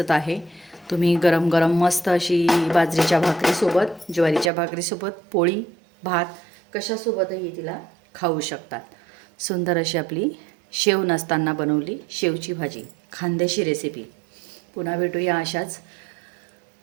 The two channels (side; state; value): left; drops out; at 4.5 s